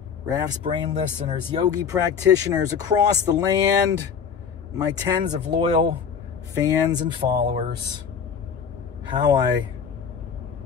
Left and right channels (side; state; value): right; quieter; 6.8 dB